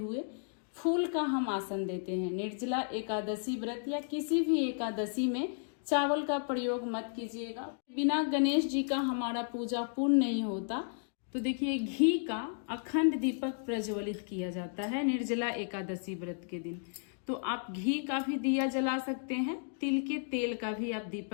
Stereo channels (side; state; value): right; silent; digital silence